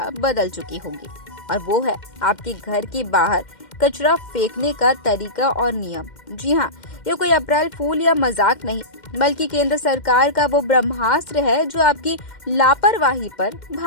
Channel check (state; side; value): late; right; 2.1 ms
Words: बदल चुकी होगी और वो है आपके घर के बाहर कचरा फेंकने का तरीका और नियम। जी हाँ, ये कोई अप्रैल फूल या मजाक नहीं, बल्कि केंद्र सरकार का वो ब्रह्मास्त्र है जो आपकी लापरवाही पर